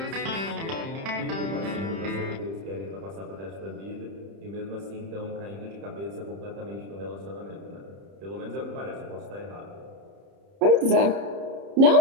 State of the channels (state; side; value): late; left; 30 ms